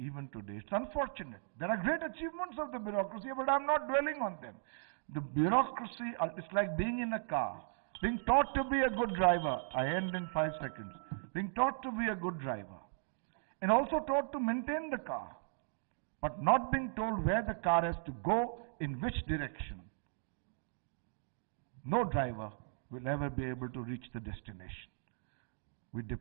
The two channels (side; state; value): left; silent; digital silence